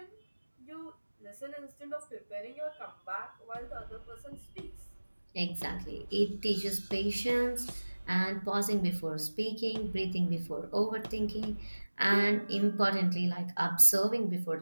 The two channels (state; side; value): inverted; both; correlation -1.00